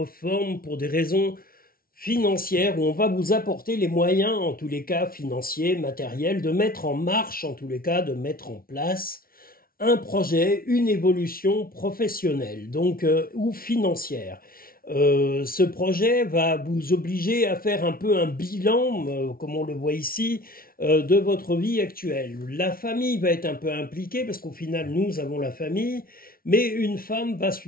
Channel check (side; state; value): right; late; 0.43 ms